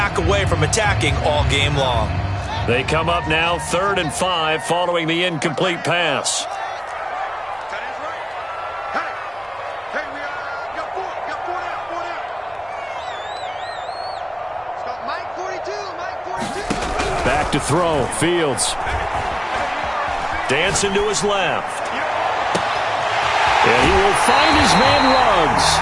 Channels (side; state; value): both; identical; correlation 1.00